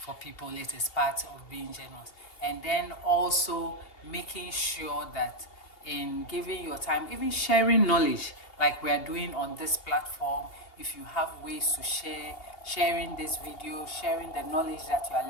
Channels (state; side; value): late; right; 2.8 ms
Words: people, it is part of being generous. And then also making sure that in giving your time, even sharing knowledge like we are doing on this platform, if you have ways to share, sharing this video, sharing the knowledge that you are